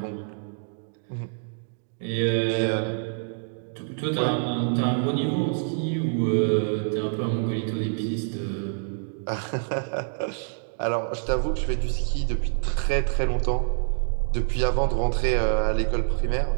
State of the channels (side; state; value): left; silent; digital silence